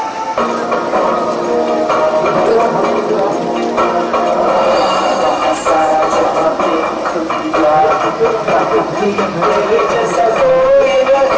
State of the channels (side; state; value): both; identical; correlation 1.00